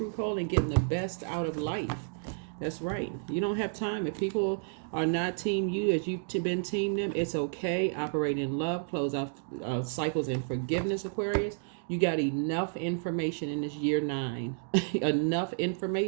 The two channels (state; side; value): silent; left; digital silence